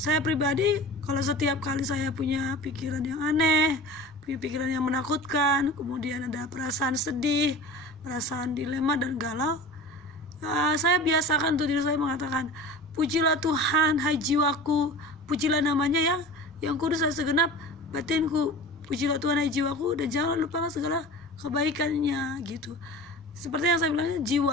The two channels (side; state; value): both; normal; correlation 0.35